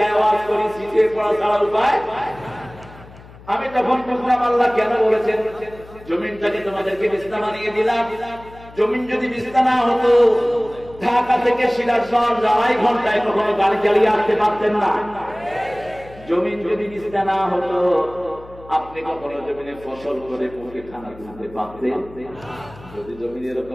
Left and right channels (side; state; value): left; noise; hum, 20 dB below the sound